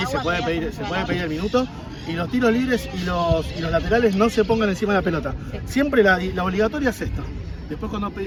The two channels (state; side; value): identical; both; correlation 1.00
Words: se puede pedir el minuto. Y los tiros libres y los laterales no se pongan encima de la pelota. Siempre la obligatoria es esta. Después cuando